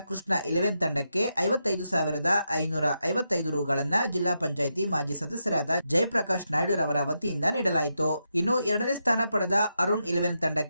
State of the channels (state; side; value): inverted; both; correlation -0.84